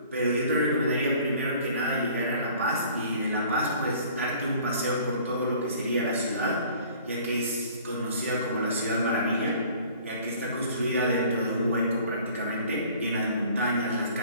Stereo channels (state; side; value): inverted; both; correlation -0.51